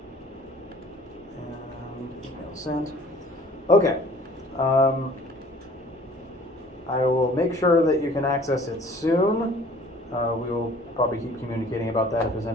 And email sent. Okay. I will make sure that you can access it soon. We will probably keep communicating about that if there's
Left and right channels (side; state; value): both; normal; correlation 0.51